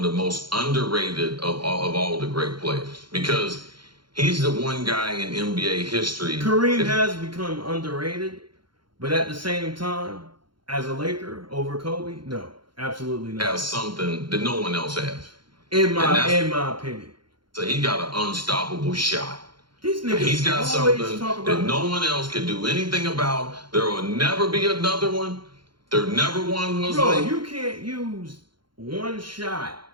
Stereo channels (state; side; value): late; left; 0.73 ms